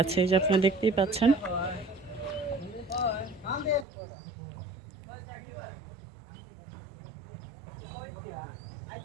যে আপনারা দেখতেই পাচ্ছেন।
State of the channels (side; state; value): left; drops out; at 3.9 s